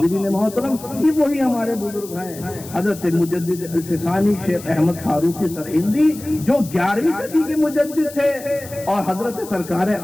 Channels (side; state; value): left; noise; hiss, 16 dB below the sound